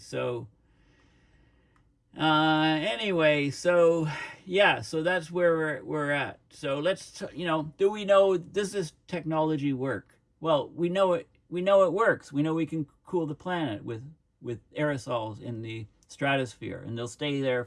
anyway, so yeah, so that's where we're at. So let's, do we know, does this technology work? Well, we know it works. We know we can cool the planet with aerosols in the stratosphere, and they'll stay there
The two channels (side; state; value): both; identical; correlation 1.00